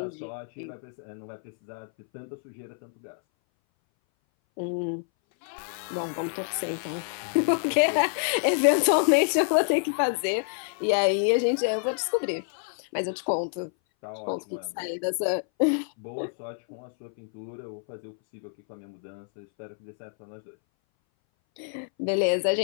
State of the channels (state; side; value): silent; right; 59 dB below the other